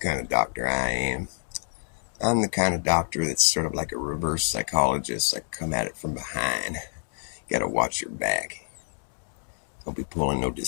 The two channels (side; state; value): right; silent; digital silence